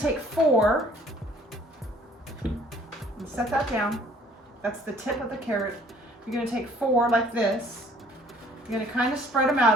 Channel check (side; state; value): both; normal; correlation 0.57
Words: take 4 and set that down. That's the tip of the carrot. You're going to take 4 like this. You're going to kind of spread them